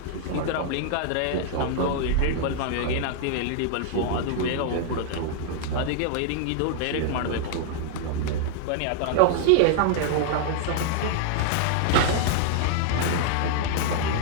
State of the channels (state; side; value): different; both; correlation -0.01